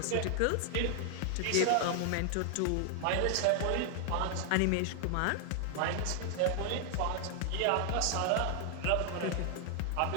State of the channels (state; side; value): different; both; correlation 0.00